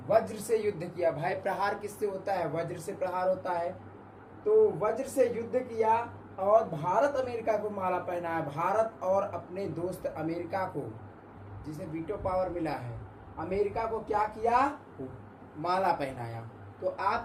वज्र से युद्ध किया। भाई प्रहार किससे होता है? वज्र से प्रहार होता है। तो वज्र से युद्ध किया और भारत अमेरिका को माला पहनाया। भारत और अपने दोस्त अमेरिका को, जिसे वीटो पावर मिला है, अमेरिका को क्या किया? माला पहनाया। तो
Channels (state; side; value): identical; both; correlation 1.00